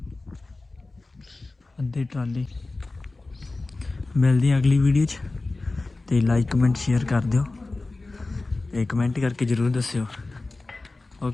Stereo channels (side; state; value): right; quieter; 3.3 dB